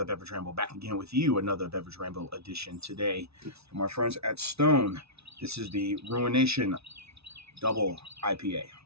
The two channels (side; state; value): left; late; 0.79 ms